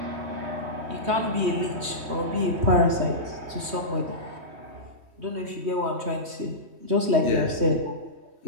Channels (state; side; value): late; left; 3.2 ms